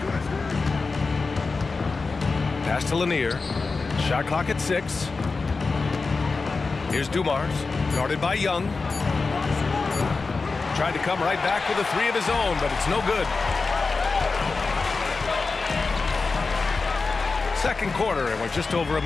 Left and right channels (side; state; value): right; quieter; 4.1 dB